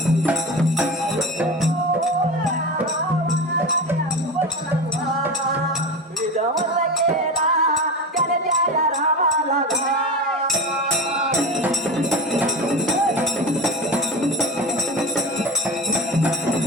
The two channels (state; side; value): normal; both; correlation 0.26